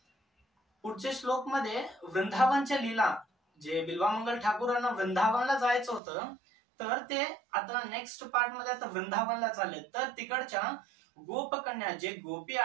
पुढच्या श्लोक मध्ये वृंदावनच्या लीला, जे बिल्वामंगल ठाकूरांना वृंदावनला जायचं होतं तर ते आता नेक्स्ट पार्ट मध्ये आता वृंदावनला चालले। तर तिकडच्या गोपकन्या जे गोपी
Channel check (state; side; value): drops out; left; at 6.0 s